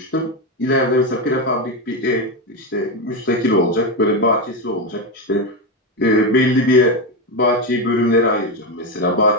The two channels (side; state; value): both; normal; correlation 0.11